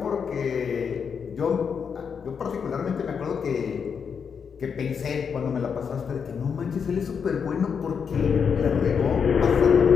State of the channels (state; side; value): quieter; right; 6.5 dB